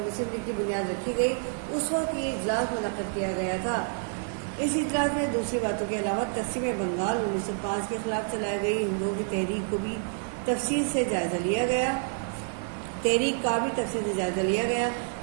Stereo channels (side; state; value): left; silent; 59 dB below the other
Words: لیگ کی بنیاد رکھی گئی اس وقت یہ اجلاس منعقد کیا گیا تھا. اس اجلاس میں دوسری باتوں کے علاوہ تقسیم بنگال 1905 کے خلاف چلائی گئی ہندوؤں کی تحریک کو بھی تفصیل سے جائزہ لیا گیا، تحریک کا بھی تفصیل سے جائزہ لیا گیا